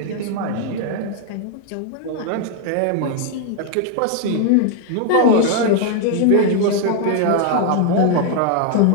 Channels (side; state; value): both; different; correlation 0.00